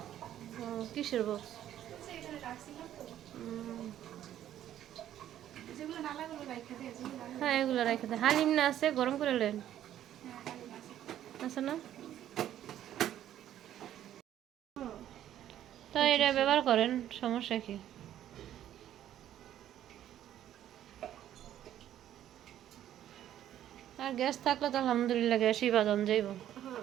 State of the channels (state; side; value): quieter; left; 11.6 dB